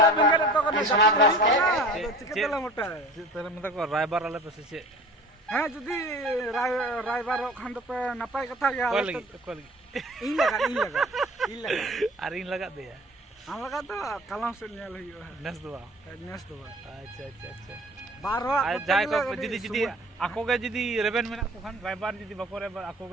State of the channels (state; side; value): normal; both; correlation 0.43